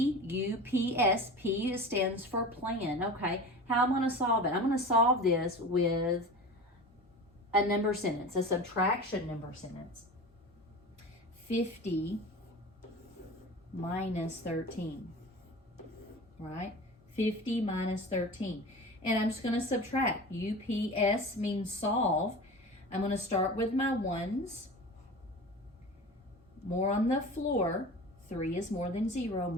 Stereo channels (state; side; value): normal; both; correlation 0.34